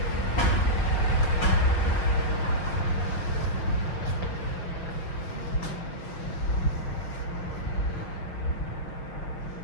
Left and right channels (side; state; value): right; late; 5.9 ms